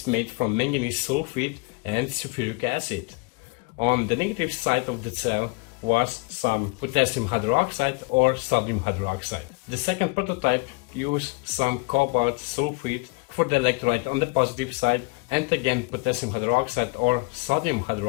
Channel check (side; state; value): right; quieter; 28.9 dB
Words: made from manganese sulfide and sulfuric acid. On the negative side of the cell was some potassium hydroxide or sodium hydroxide. The second prototype used some cobalt sulfide for the electrolyte on the positive side and again potassium hydroxide or sodium